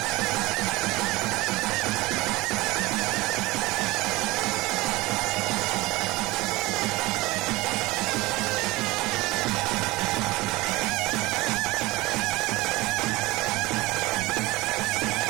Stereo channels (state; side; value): quieter; left; 21.0 dB